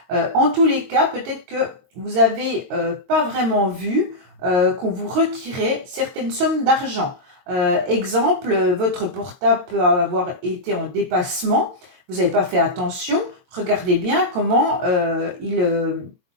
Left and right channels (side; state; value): left; late; 22 ms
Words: En tous les cas, peut-être que vous n'avez pas vraiment vu qu'on vous retirait certaines sommes d'argent. Exemple, votre portable peut avoir été en dépassement, vous n'avez pas fait attention. Regardez bien comment